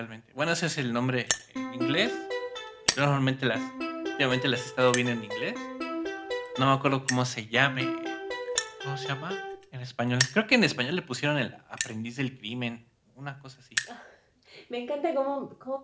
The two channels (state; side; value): identical; both; correlation 1.00